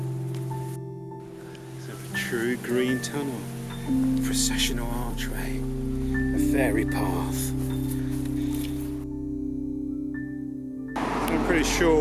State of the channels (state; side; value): identical; both; correlation 1.00